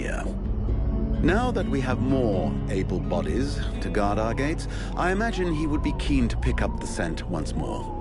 Now that we have more able bodies to guard our gates, I imagine he would be keen to pick up the scent once more.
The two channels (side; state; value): both; identical; correlation 1.00